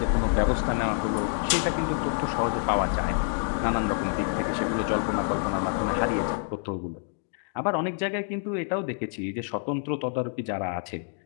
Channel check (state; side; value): silent; right; 60 dB below the other